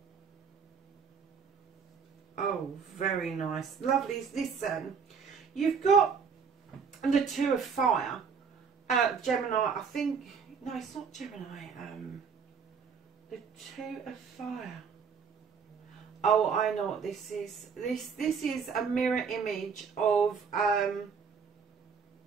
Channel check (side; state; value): left; quieter; 6.1 dB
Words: Oh, very nice. Lovely. Listen. You've got the 2 of fire, Gemini, I think, no, it's not Gemini, the 2 of fire. Oh, I know what this is. This is a mirror image of